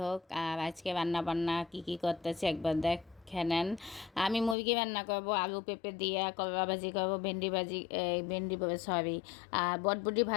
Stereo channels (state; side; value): drops out; right; at 4.5 s